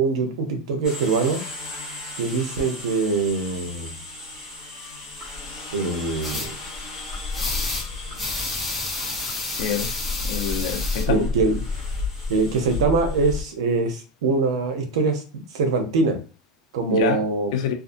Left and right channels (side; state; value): both; normal; correlation 0.11